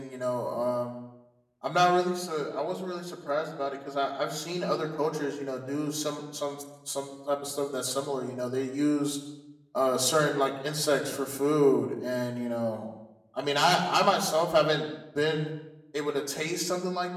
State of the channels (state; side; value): identical; both; correlation 1.00